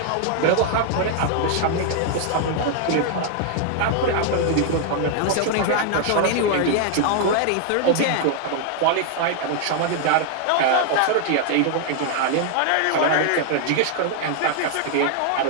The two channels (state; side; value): different; both; correlation 0.00